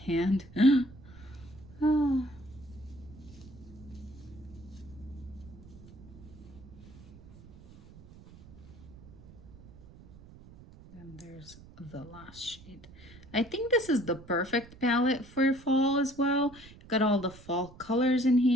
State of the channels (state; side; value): noise; right; rumble, 20 dB below the sound